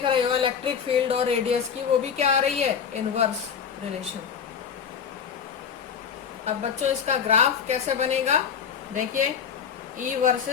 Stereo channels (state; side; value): quieter; right; 7.2 dB